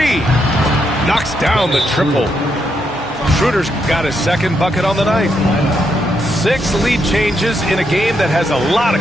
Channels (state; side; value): normal; both; correlation 0.79